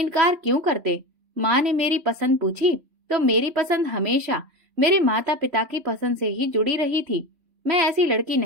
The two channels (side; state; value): left; late; 3.4 ms